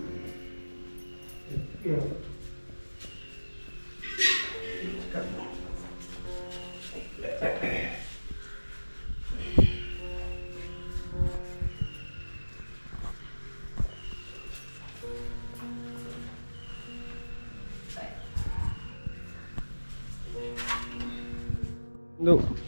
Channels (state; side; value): inverted; both; correlation -1.00